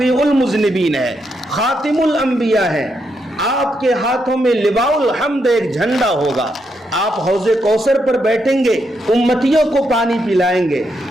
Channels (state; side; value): normal; both; correlation 0.80